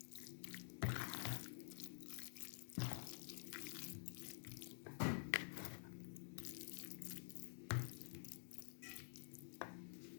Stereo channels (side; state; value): right; silent; digital silence